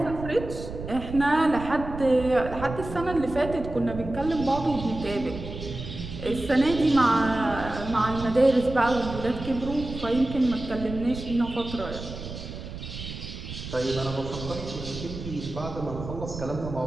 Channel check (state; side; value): noise; right; rumble, 10 dB below the sound